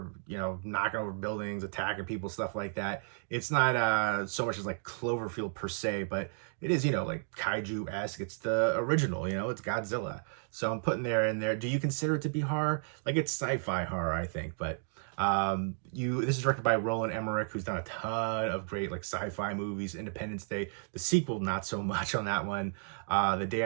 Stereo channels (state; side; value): silent; left; digital silence